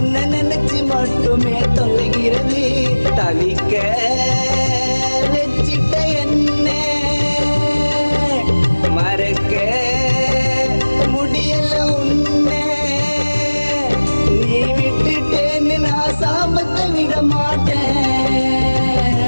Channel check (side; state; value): both; inverted; correlation -1.00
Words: நினைச்சு மட்டுமே தொலைகிறது. தவிக்க வச்சிட்ட என்ன மறக்க முடியல உன்னை. நீ விட்டுட்டேன்னு நான் சாபத்தை விட மாட்டேன்.